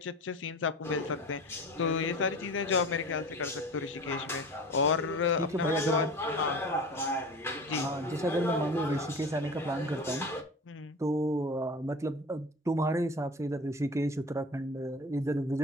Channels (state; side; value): normal; both; correlation 0.36